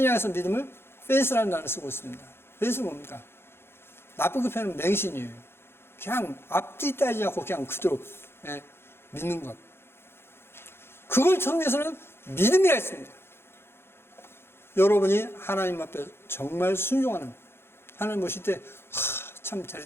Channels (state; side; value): late; right; 0.11 ms